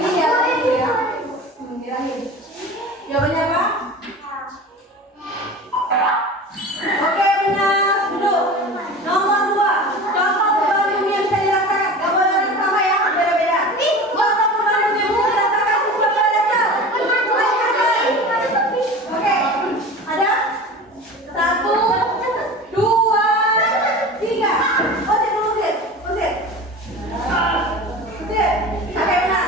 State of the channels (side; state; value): both; normal; correlation 0.35